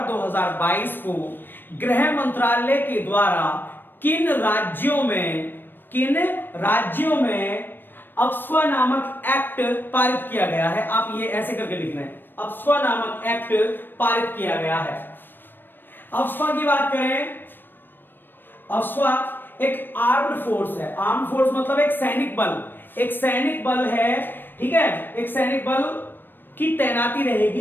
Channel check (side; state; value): right; late; 0.095 ms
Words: 2022 को गृह मंत्रालय के द्वारा किन राज्यों में अफ्स्पा नामक एक्ट पारित किया गया है। आप ये ऐसे करके लिखना है, अफ्स्पा नामक एक्ट पारित किया गया है। अफ्स्पा की बात करें, अफ्स्पा एक आर्म्ड फोर्स है। आर्म्ड फोर्स मतलब एक सैनिक बल है, ठीक है। एक सैनिक बल की तैनाती